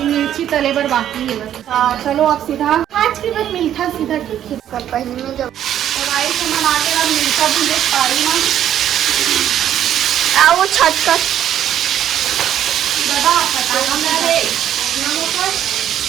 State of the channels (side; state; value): left; quieter; 10.7 dB